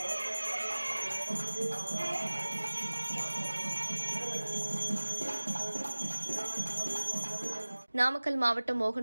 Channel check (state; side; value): inverted; both; correlation -1.00